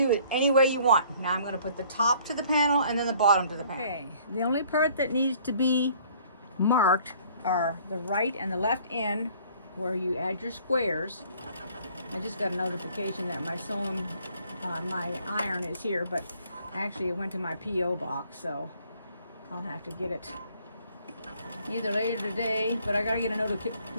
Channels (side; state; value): both; inverted; correlation -0.58